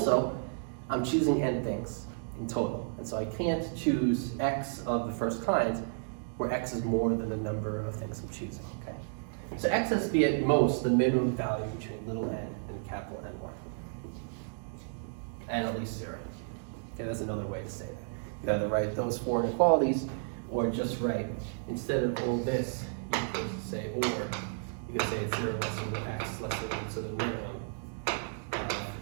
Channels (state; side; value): silent; left; digital silence